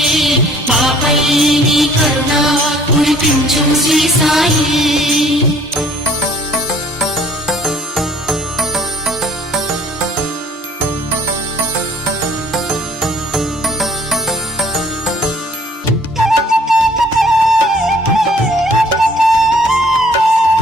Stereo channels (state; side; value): normal; both; correlation 0.57